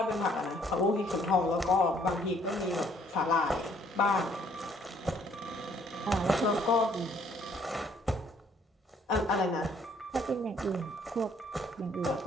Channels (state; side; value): normal; both; correlation 0.63